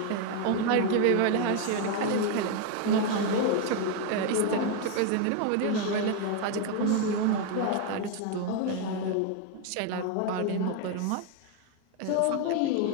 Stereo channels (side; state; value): both; different; correlation 0.01